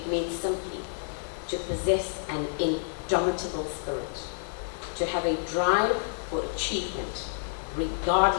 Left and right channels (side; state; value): right; silent; digital silence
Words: means simply to possess an indomitable spirit, to have a drive for achievement,